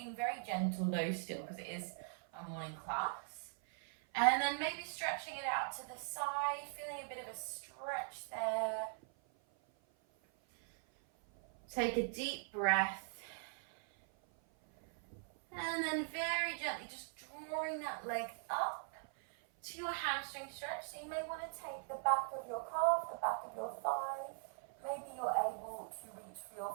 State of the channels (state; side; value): silent; left; 50 dB below the other